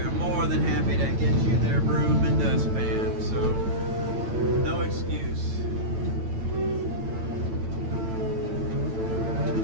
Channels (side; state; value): left; late; 9.0 ms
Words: more than happy to get you their broom and dustpan, so no excuse.